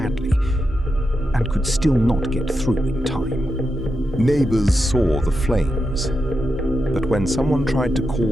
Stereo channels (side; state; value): both; normal; correlation 0.87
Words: and could still not get through in time. Neighbors saw the flames, but when someone tried to